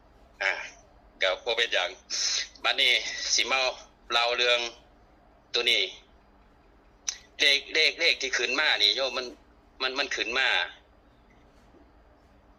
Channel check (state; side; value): identical; both; correlation 1.00